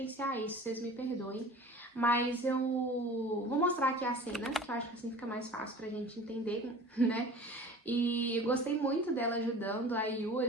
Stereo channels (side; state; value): both; normal; correlation 0.42